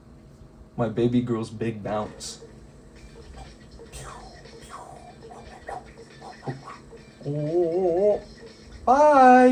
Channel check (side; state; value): both; identical; correlation 1.00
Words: baby girl's big bounce. Oh,